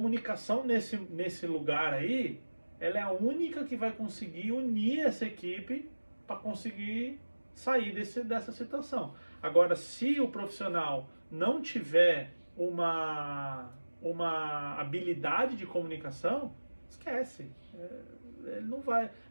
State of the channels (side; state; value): both; inverted; correlation -1.00